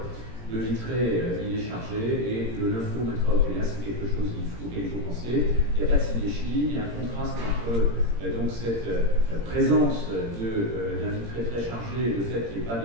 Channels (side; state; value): left; late; 17 ms